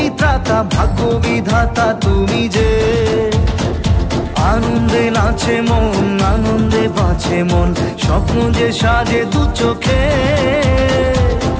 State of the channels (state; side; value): identical; both; correlation 1.00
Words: ত্রাতা, ভাগ্য বিধাতা তুমি যে। আনন্দে নাচে মন, আনন্দে বাঁচে মন, স্বপ্ন যে সাজে দু চোখে।